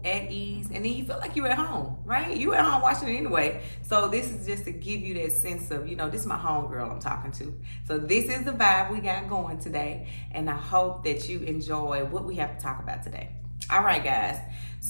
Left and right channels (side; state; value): both; inverted; correlation -1.00